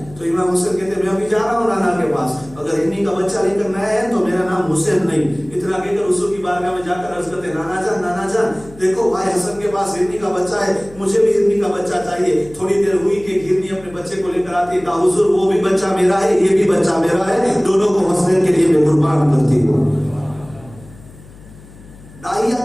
تو امام حسین کہتے میں ابھی جا رہا ہوں نانا کے پاس، اگر ہرنی کا بچہ لے کر نہ آیا تو میرا نام حسین نہیں۔ اتنا کہہ کر حضور کی بارگاہ میں جا کر عرض کرتے نانا جان دیکھو بھائی حسن کے پاس ہرنی کا بچہ ہے، مجھے بھی ہرنی کا بچہ چاہیے۔ تھوڑی دیر ہوئی کہ ہرنی اپنے بچے کو لے کر آتی ہے، کہا حضور وہ بھی بچہ میرا ہے، یہ بھی بچہ میرا ہے، دونوں کو حسین کے لیے میں قربان کرتی ہوں۔ داہیہ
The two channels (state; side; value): noise; left; hum, 21 dB below the sound